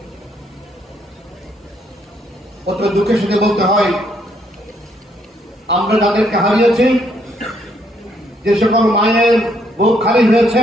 অত দুঃখের সাথে বলতে হয়, আমরা যাদেরকে হারিয়েছি, যে সকল মায়ের বুক খালি হয়েছে,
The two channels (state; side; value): normal; both; correlation 0.71